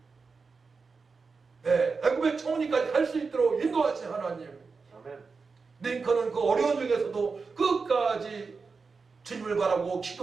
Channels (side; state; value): left; quieter; 4.7 dB